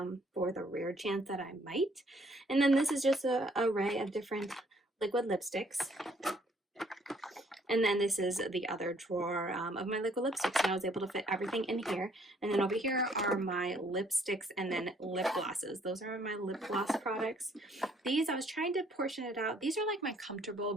for the rare chance that I might. And then this is just an array of different liquid lipsticks. And then this is the other drawer of my liquid lipsticks, and I was able to fit everything in here. And then over here are my lipsticks and then lip glosses. Those are my lip gloss products. These, I was trying to portion it out. These are like my comfortable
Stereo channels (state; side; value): normal; both; correlation 0.64